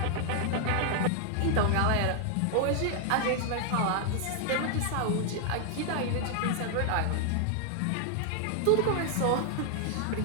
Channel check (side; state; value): both; different; correlation 0.00